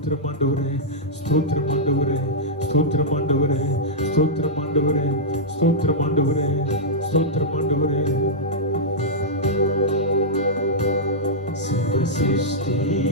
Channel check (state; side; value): normal; both; correlation -0.09